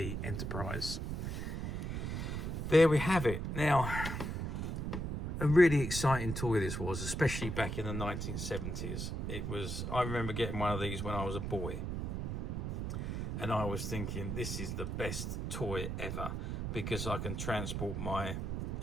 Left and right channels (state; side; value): noise; right; rumble, 3 dB below the sound